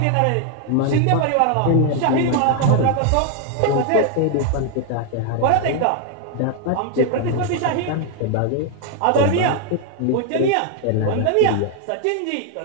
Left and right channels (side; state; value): both; different; correlation 0.00